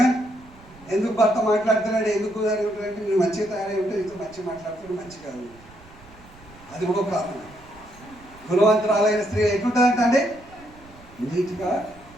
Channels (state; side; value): noise; right; rumble, 23 dB below the sound